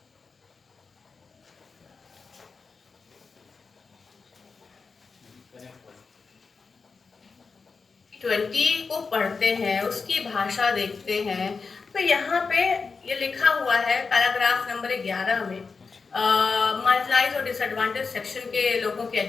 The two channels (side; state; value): right; quieter; 4.8 dB